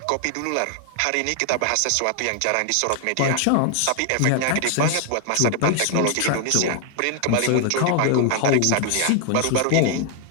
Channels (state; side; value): different; both; correlation 0.00